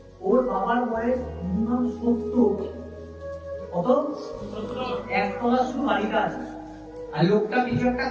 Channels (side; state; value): both; identical; correlation 1.00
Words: ওর বাবার বয়স মিনিমাম 70, কত? 1 তলা শুধু বাড়িটা আছে, আর লোকটা কিছু একটা